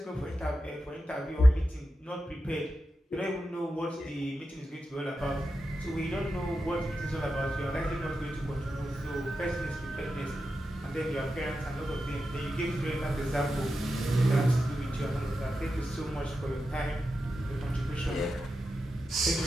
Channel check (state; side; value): normal; both; correlation 0.90